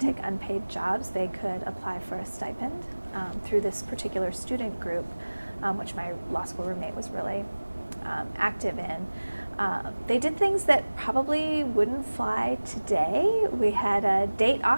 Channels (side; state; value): both; inverted; correlation -1.00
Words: unpaid jobs. They could apply for a stipend through this particular student group, which my law school roommate was really active in. They did things that probably wouldn't fly today. We had a